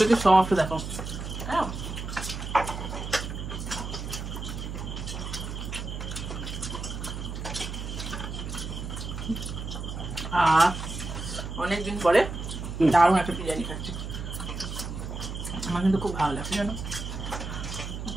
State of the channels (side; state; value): right; noise; hum, 6 dB below the sound